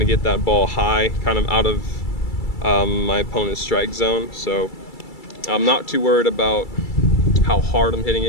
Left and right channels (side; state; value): right; late; 2.3 ms